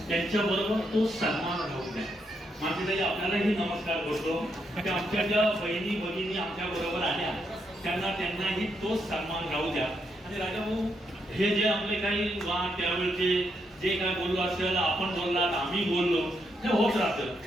त्यांच्याबरोबर तो सन्मान राहू द्या. माझे आपल्यालाही नमस्कार करतो की आमच्या ज्या बहिणी भगिनी आमच्या बरोबर आल्या त्यांनाही तोच सन्मान राहू द्या. आणि राजाभाऊ, हे जे आपले काही वाद त्यावेळेचे जे काय बोललो असेल, आपण बोललात, आम्ही बोललो, ते होत राहतं.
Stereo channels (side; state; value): both; normal; correlation 0.79